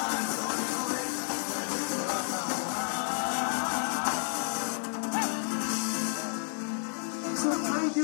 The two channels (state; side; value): silent; right; digital silence